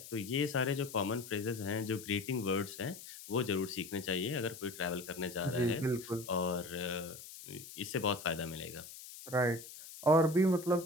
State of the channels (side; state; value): left; noise; hiss, 14 dB below the sound